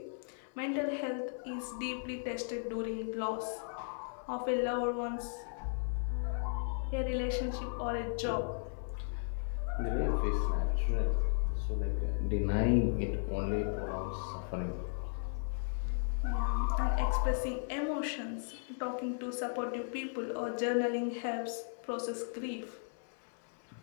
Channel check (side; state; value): right; silent; 54 dB below the other